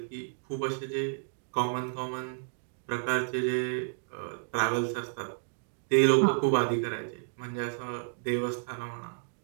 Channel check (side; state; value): left; silent; digital silence